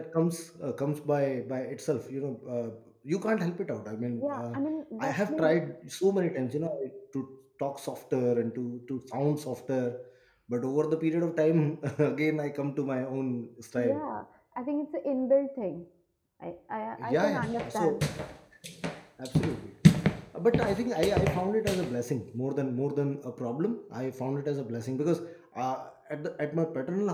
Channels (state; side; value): identical; both; correlation 1.00